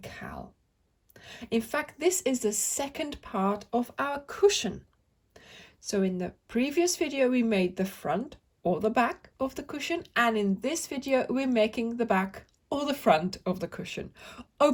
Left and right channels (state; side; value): identical; both; correlation 1.00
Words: cowl. In fact, this is the second part of our cushion. So in the previous video we made the front or the back of the cushion, and in this video we're making the back or the front of the cushion, or